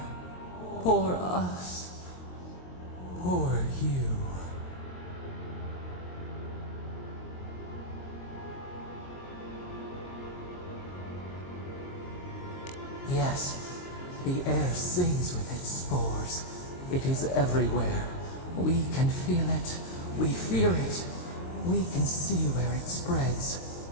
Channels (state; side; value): late; right; 22 ms